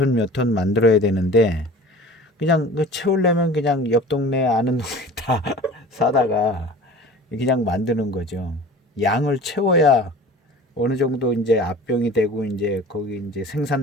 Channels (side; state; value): both; normal; correlation 0.41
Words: 몇 톤 만들어야 되는데, 그냥 그 채우려면 그냥 옆 동네 아는 동네 다 사다가 그냥 만드는 거죠. 양을 채워야 어느 정도 이제 압병이 되고 이제 거기 이제